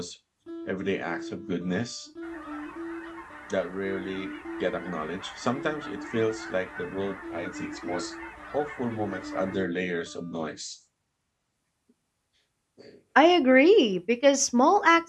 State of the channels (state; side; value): identical; both; correlation 1.00